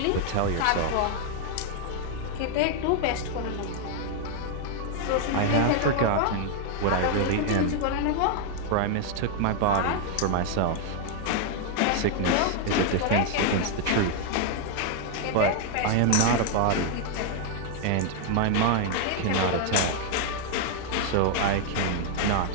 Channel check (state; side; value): different; both; correlation 0.00